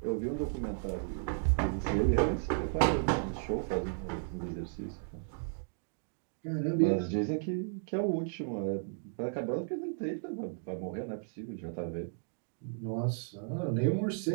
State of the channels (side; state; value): left; silent; digital silence